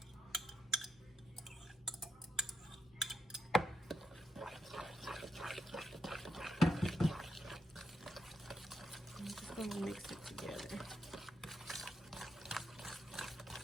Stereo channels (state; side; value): normal; both; correlation 0.82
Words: I'm just going to mix it together.